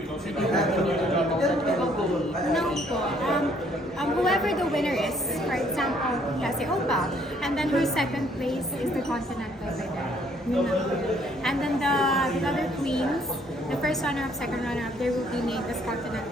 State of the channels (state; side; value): normal; both; correlation 0.64